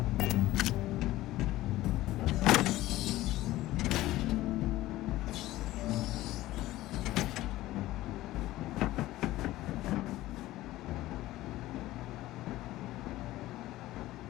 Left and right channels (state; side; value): quieter; right; 16.4 dB